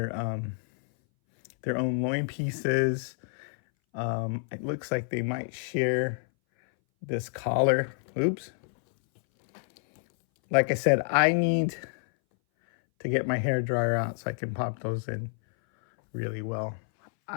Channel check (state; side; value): silent; right; 59 dB below the other